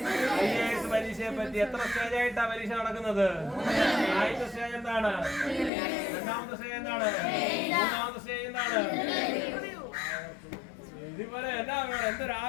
പരീക്ഷയെ പറ്റി. എത്ര സ്റ്റേജായിട്ടാണ് പരീക്ഷ നടക്കുന്നത്? ആദ്യത്തെ സ്റ്റേജ് എന്താണ്? രണ്ടാമത്തെ സ്റ്റേജ് എന്താണ്? മൂന്നാമത്തെ സ്റ്റേജ് എന്താണ്? ഇതിപോലെ എന്നാ വേണം, എന്തൊരു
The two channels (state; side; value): drops out; right; at 5.7 s